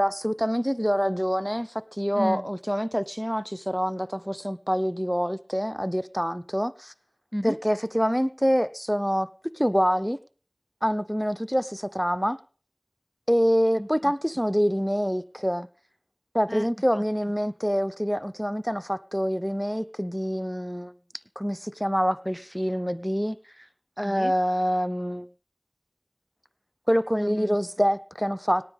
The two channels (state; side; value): identical; both; correlation 1.00